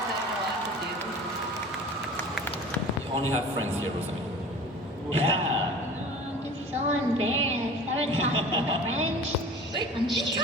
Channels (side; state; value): both; normal; correlation 0.40